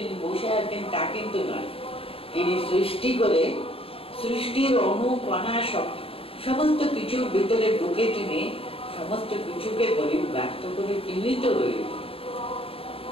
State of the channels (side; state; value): right; late; 0.27 ms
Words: বসে আছেন তা কিন্তু নয়। তিনি সৃষ্টি করে সৃষ্টির অনুকণা সমস্ত কিছুর ভিতরে ঢুকে তিনি সমস্ত কিছুকে পরিব্যাপ্ত করে তিনি তো রয়েছে।